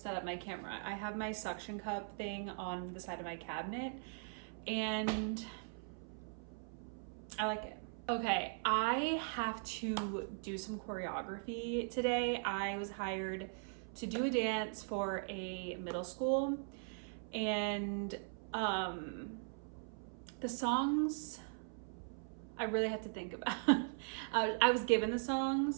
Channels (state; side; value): silent; left; 51 dB below the other